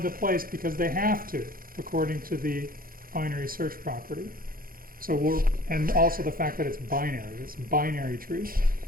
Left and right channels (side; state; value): left; late; 0.42 ms